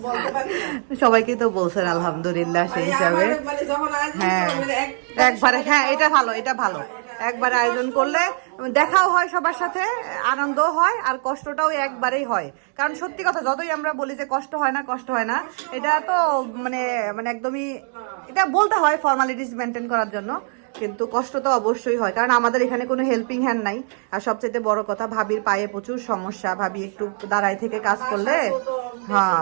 সবাইকে তো বলছেন আলহামদুলিল্লাহ সেই হিসাবে হ্যাঁ একবারে হ্যাঁ এটা ভালো একবারে আয়োজন করলে দেখাও হয় সবার সাথে আনন্দ হয় আর কষ্টটাও একবারেই হয় কারণ সত্যি কথা যতই আমরা বলি যে কষ্ট হয় না এটা তো মানে একদমই এটা বলতে হয় ফর্মালিটিস মেনটেন করার জন্য কিন্তু কষ্ট তো অবশ্যই হয় কারণ আমাদের এখানে কোনো হেল্পিং হ্যান্ড নাই আর সবচেয়ে বড় কথা ভাবির পায়ে প্রচুর সমস্যা ভাবি একটু দাঁড়ায় থেকে কাজ করলে হ্যাঁ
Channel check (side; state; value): left; silent; 55 dB below the other